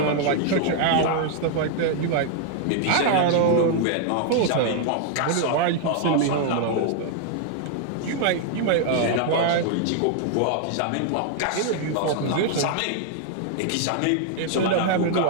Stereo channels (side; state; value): both; different; correlation 0.00